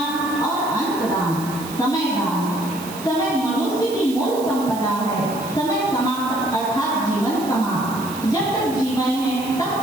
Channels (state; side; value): noise; right; hiss, 14 dB below the sound